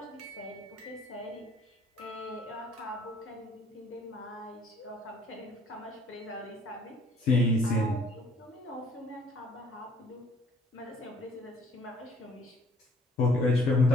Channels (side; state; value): both; normal; correlation 0.59